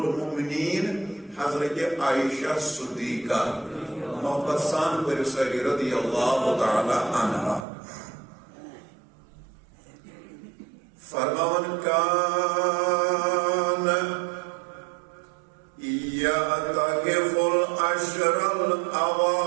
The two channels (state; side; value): drops out; left; at 7.7 s